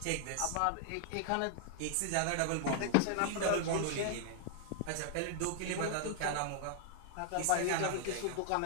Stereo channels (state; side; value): different; both; correlation -0.01